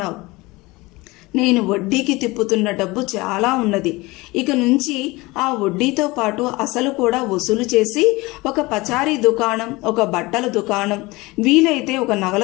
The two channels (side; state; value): right; quieter; 22.2 dB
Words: నేను వడ్డీకి తిప్పుతున్న డబ్బు చాలా ఉన్నది. ఇక నుంచి ఆ వడ్డీతో పాటు అసలు కూడా వసూలు చేసి ఒక పచారీ దుకాణం, ఒక బట్టల దుకాణం, వీలైతే ఒక